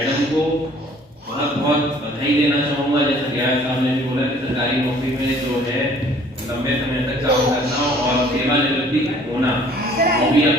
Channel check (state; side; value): normal; both; correlation 0.55